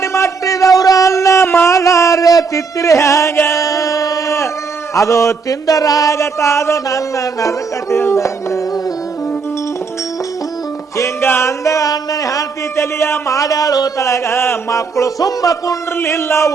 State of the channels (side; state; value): left; quieter; 5.0 dB